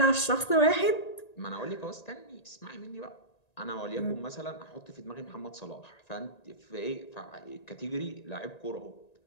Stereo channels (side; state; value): right; late; 1.9 ms